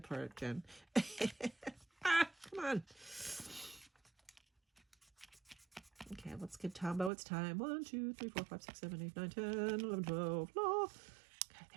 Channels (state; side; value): drops out; left; at 7.1 s